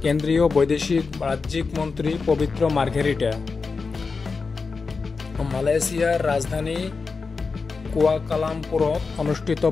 কেন্দ্ৰীয় বৈদেশিক ৰাজ্যিক মন্ত্ৰী পবিত্ৰ মাৰ্ঘেৰিটা। মালয়েছিয়াৰ ৰাজধানী কুয়ালালামপুৰত অনুষ্ঠিত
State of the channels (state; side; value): quieter; right; 4.6 dB